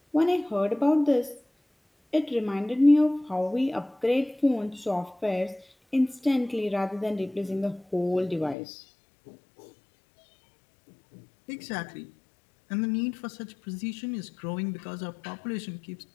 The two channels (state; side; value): drops out; right; at 8.6 s